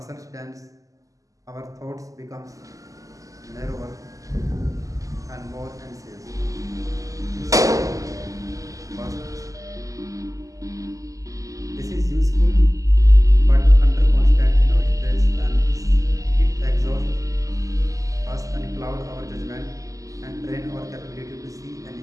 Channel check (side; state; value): left; late; 0.16 ms